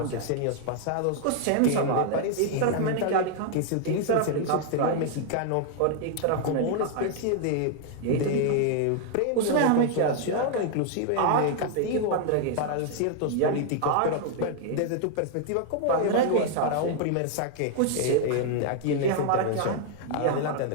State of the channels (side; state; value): both; different; correlation 0.00